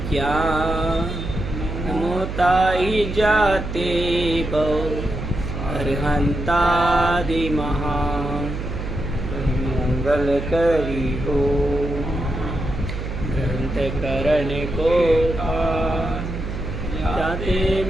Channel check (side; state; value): right; noise; hum, 6 dB below the sound